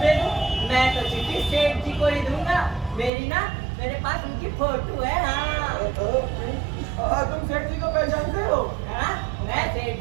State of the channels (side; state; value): left; drops out; at 3.1 s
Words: दे दूं? मैं तो चिट्ठी सेठ जी को ही दूंगा। मेरे पास उनकी फोटो है। हाँ। तुम सेठ जी को पहचानते हो? हाँ, मैं सेठ